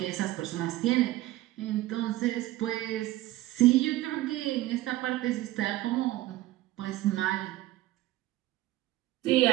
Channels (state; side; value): quieter; left; 16.4 dB